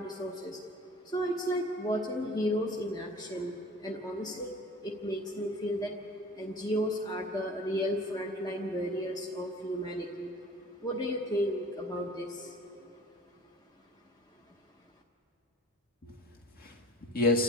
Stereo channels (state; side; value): normal; both; correlation 0.44